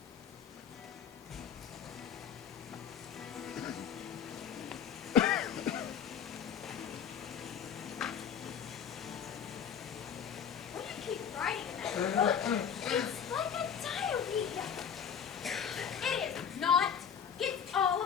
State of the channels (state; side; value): quieter; right; 7.8 dB